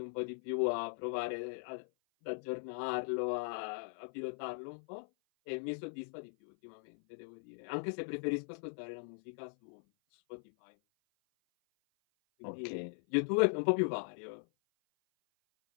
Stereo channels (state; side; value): silent; right; 52 dB below the other